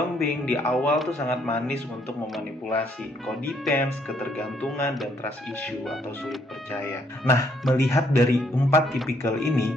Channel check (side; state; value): both; normal; correlation 0.69